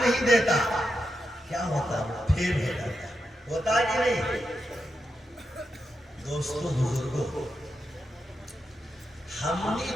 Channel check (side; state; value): both; normal; correlation 0.86